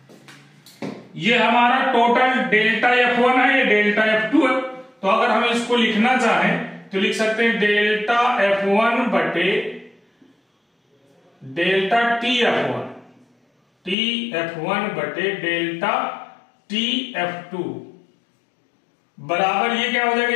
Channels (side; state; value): right; drops out; at 14.0 s